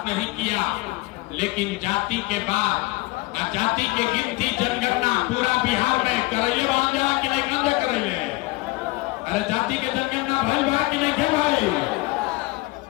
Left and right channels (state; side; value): quieter; right; 22.4 dB